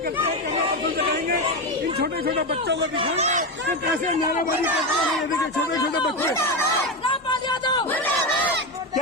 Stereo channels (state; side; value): normal; both; correlation 0.14